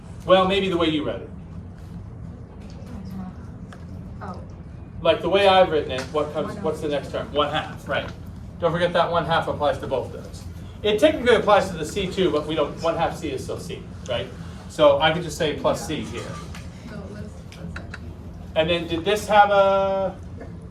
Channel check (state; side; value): identical; both; correlation 1.00